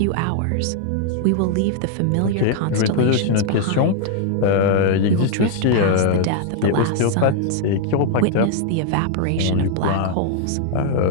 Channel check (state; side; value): different; both; correlation 0.00